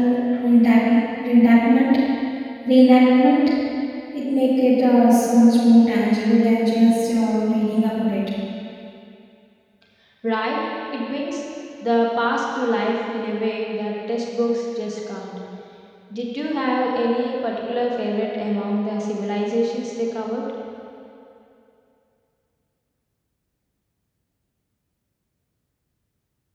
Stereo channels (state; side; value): identical; both; correlation 1.00